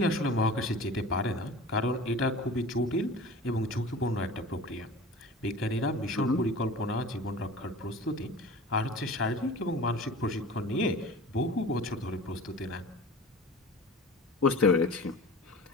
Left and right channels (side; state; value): both; normal; correlation 0.38